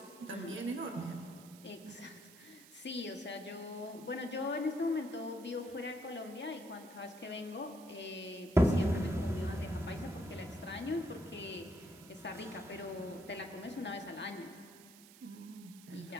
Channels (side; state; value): right; noise; hiss, 19 dB below the sound